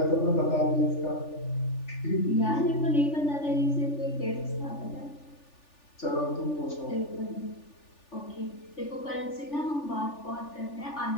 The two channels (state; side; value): late; right; 3.4 ms